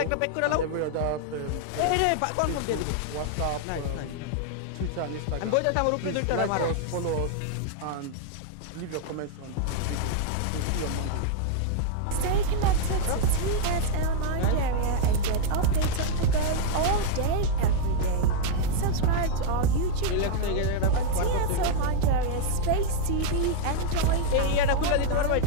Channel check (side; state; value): both; different; correlation -0.01